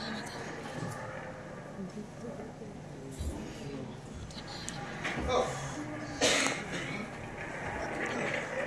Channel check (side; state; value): both; identical; correlation 1.00